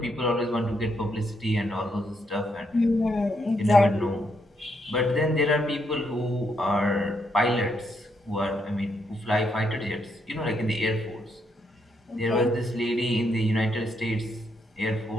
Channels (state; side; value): normal; both; correlation 0.77